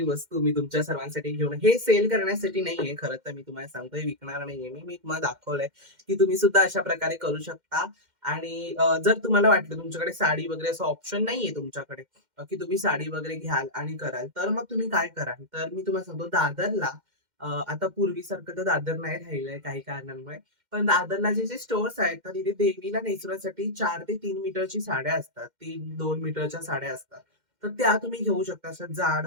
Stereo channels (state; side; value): late; left; 2.1 ms